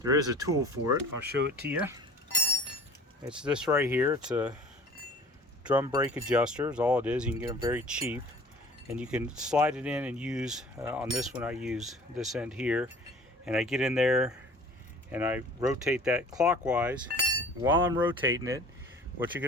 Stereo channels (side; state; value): both; normal; correlation 0.47